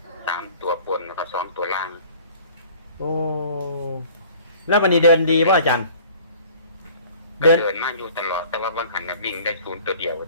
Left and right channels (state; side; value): inverted; both; correlation -0.49